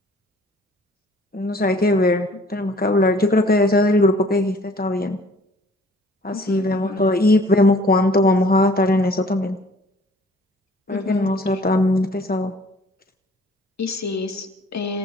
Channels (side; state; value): both; normal; correlation 0.54